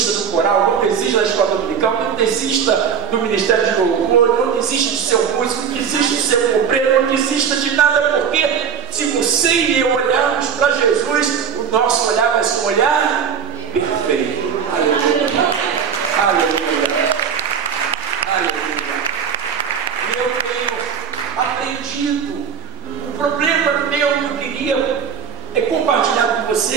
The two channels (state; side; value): quieter; left; 7.5 dB